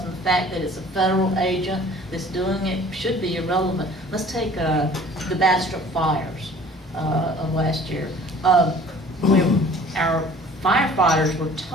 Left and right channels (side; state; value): both; normal; correlation 0.49